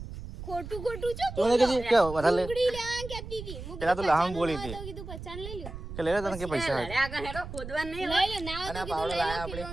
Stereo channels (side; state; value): right; noise; rumble, 10 dB below the sound